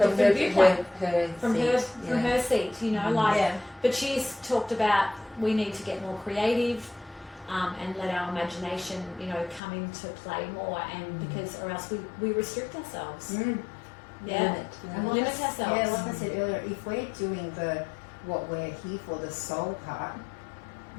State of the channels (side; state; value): right; drops out; at 9.6 s